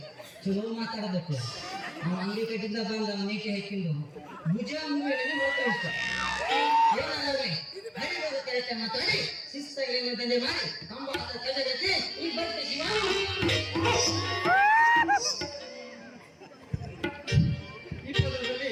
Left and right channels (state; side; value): identical; both; correlation 1.00